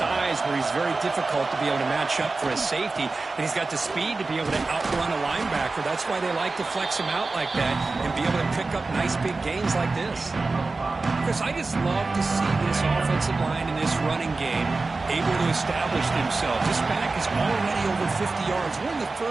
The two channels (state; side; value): quieter; left; 3.7 dB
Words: where he's very difficult to be able to match up for his safety, and he's got the speed to be able to outrun a linebacker. That's why they like to flex him out like that and be able to pick up nice big gains like this. Chris, I just love to see this offensive line in this running game able to establish themselves. This back is already over 50 yards. We're in the